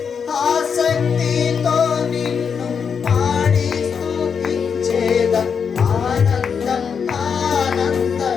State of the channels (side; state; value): right; quieter; 6.5 dB